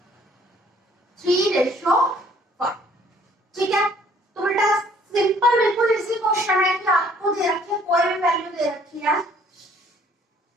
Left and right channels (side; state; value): both; normal; correlation 0.59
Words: 3:1। ठीक है, तो बेटा सिंपल बिल्कुल इसी क्वेश्चन है कि आपको दे रखी है, कोई भी वैल्यू दे रखी है,